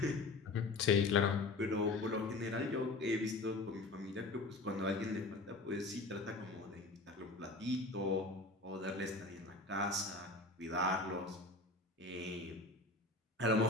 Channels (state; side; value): quieter; right; 3.2 dB